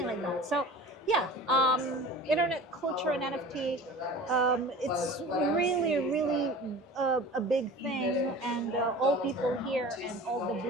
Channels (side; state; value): both; normal; correlation 0.39